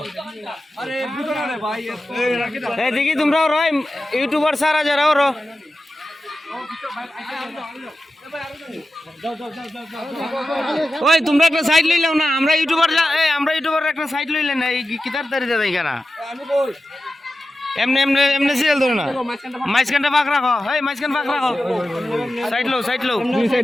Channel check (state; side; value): normal; both; correlation 0.93